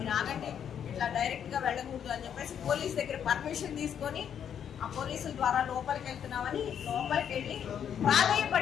ఆగండి, ఇట్లా డైరెక్ట్గా వెళ్ళకూడదు అని చెప్పేసి పోలీస్ దగ్గర పర్మిషన్ తీసుకొని ఆ పోలీసుల ద్వారా లోపలికి వెళ్తున్నామని లోపలికి వెళ్ళి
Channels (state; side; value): quieter; right; 8.6 dB